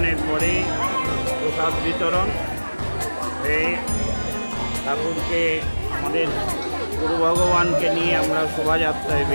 পরে প্রসাদ বিতরণ হয়ে ঠাকুরকে আমাদের গুরু ভগবানকে নিয়ে আমরা শোভাযাত্রায়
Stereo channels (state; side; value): inverted; both; correlation -1.00